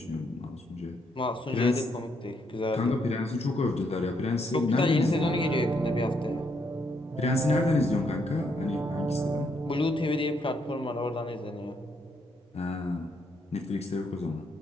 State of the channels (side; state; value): both; normal; correlation 0.75